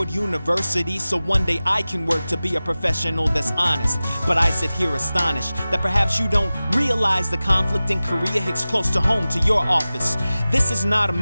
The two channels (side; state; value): both; inverted; correlation -0.97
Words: University, so one day I can work to be a professional that's honest. But I sit here astonished that perhaps you don't realize the conflict in Korea hits close to home to your office. This is not a